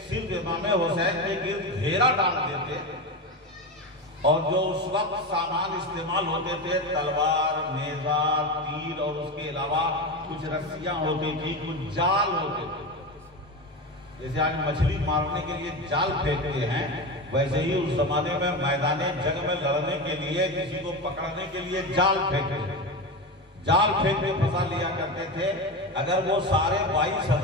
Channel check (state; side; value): normal; both; correlation 0.20